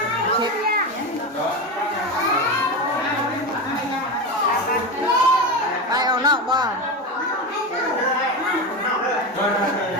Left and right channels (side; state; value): both; normal; correlation 0.20